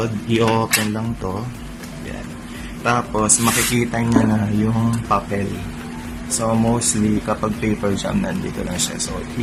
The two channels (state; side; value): identical; both; correlation 1.00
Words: i-open lang to. Yan. Tapos, makikita nyo na yung papel. So, mostly, kapag paper jam, nandito lang siya. So,